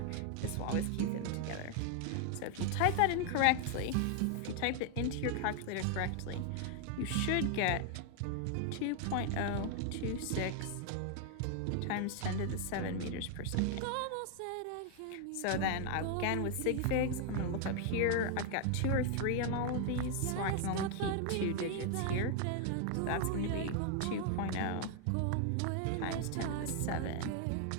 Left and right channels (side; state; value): both; different; correlation 0.00